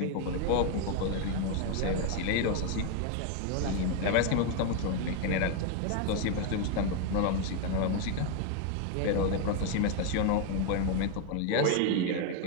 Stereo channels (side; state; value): both; different; correlation 0.01